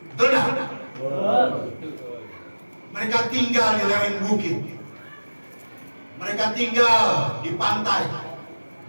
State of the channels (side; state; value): both; inverted; correlation -1.00